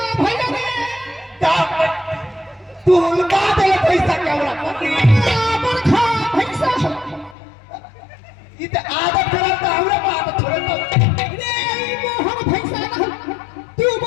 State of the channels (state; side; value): drops out; right; at 7.4 s